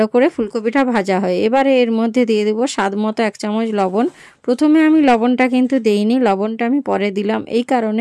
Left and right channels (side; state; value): both; identical; correlation 1.00